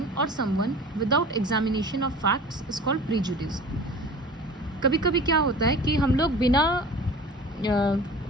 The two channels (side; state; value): both; normal; correlation 0.40